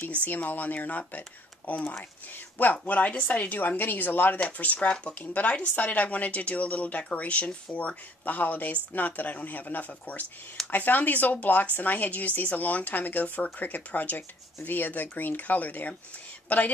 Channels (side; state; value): both; normal; correlation 0.60